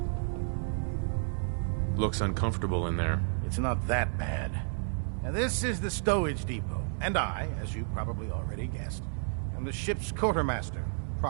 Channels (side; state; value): left; silent; 57 dB below the other